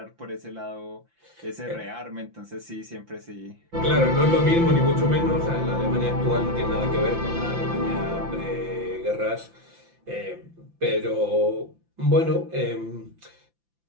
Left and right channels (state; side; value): late; left; 5.8 ms